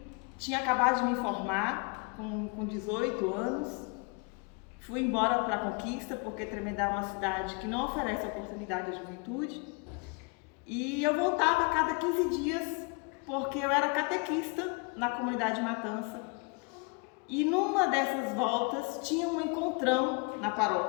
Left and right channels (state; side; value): quieter; right; 32.9 dB